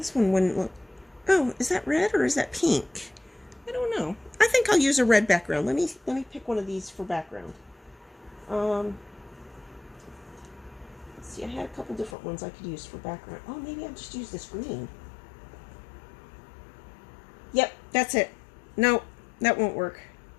one wouldn't look... Oh, is that red or is that pink? I don't know. I think I'll use a red background. Let me pick one of these for background. Let's see, I had a couple different ones I could use for background. Oh, maybe I'll just use this green. Yep, that's it. No, that won't work.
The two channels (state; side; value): drops out; right; at 12.2 s